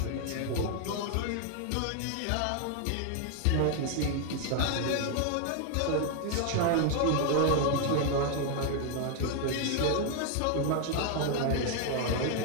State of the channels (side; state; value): both; different; correlation 0.00